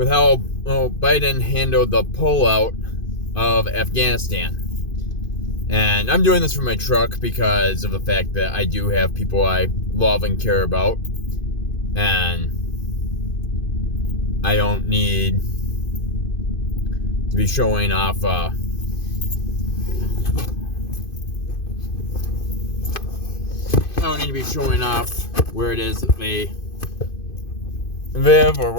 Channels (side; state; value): right; late; 2.5 ms